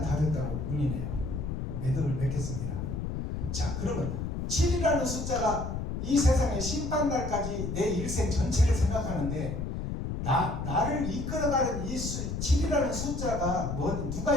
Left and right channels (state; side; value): noise; left; rumble, 4 dB below the sound